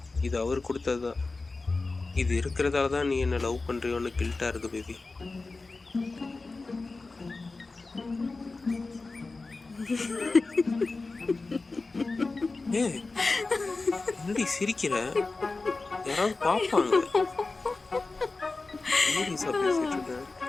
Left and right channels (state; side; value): quieter; right; 3.6 dB